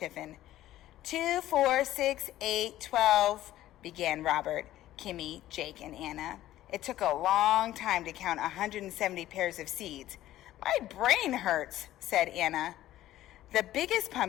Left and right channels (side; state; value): right; quieter; 14.1 dB